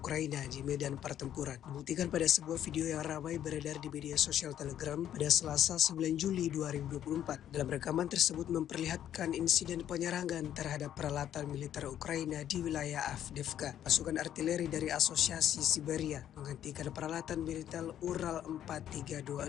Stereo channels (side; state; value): right; quieter; 10.7 dB